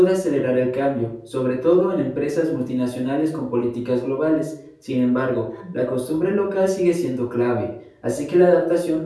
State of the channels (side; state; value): both; identical; correlation 1.00